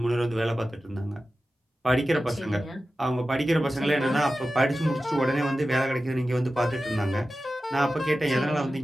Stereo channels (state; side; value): normal; both; correlation 0.94